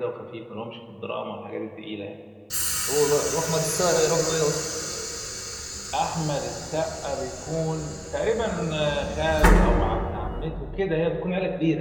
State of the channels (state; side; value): identical; both; correlation 1.00